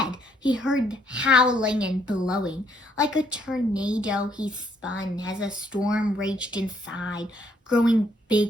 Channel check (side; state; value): both; normal; correlation 0.69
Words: he heard howling and blowing. Like a tornado, he spun as a storm raged inside, growing